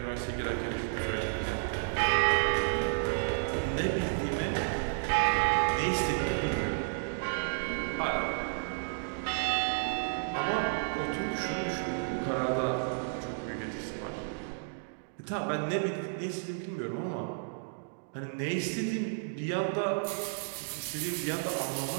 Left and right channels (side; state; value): left; silent; digital silence